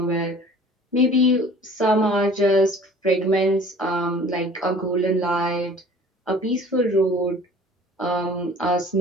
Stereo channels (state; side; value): normal; both; correlation 0.48